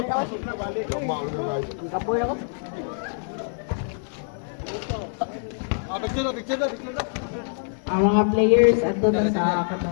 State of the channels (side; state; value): right; silent; digital silence